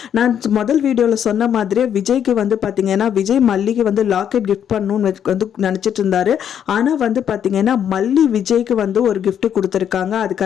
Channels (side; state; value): right; quieter; 9.0 dB